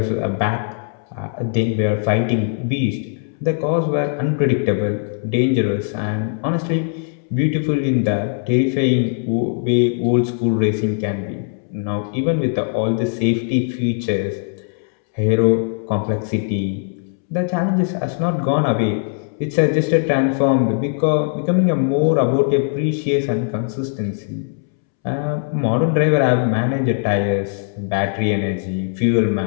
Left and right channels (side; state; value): right; silent; 66 dB below the other